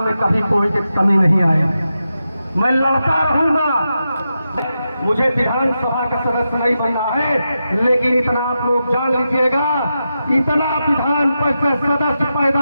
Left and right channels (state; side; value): inverted; both; correlation -0.88